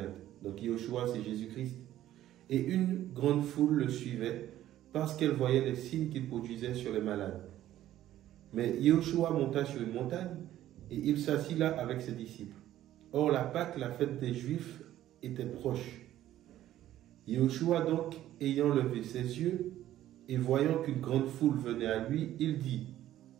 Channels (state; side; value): quieter; left; 13.1 dB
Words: Donc Yeshua, c'est Jésus-Christ. Et une grande foule le suivait parce qu'elle voyait les signes qu'il produisait sur les malades. Mais Yeshua monta sur une montagne et il s'assit là avec ses disciples. Or la Pâque, la fête des Juifs, était proche. Yeshua donc, ayant levé ses yeux et voyant qu'une grande foule venait à lui, il dit